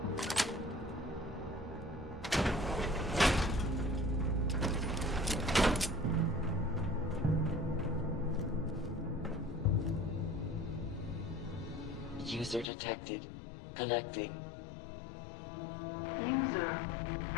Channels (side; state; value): right; drops out; at 12.7 s